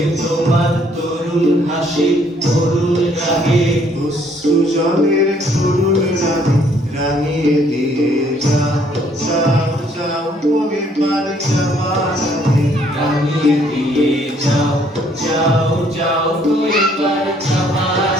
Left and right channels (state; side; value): normal; both; correlation 0.65